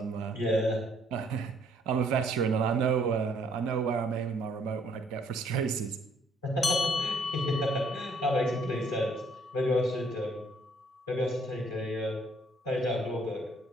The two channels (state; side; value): normal; both; correlation 0.65